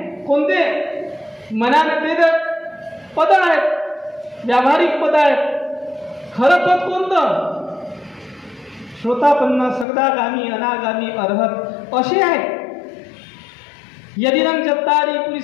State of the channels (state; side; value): drops out; right; at 9.9 s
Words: कोणते? मनाने ते तर पद आहेत, व्यावहारिक पद आहेत. खरं पद कोणतं? श्रोतापन्न, सकदागामी, अनागामी, अर्हत असे आहेत. यदिदं चत्तारी